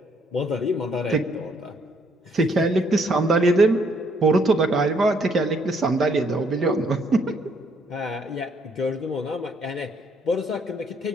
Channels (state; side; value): normal; both; correlation 0.68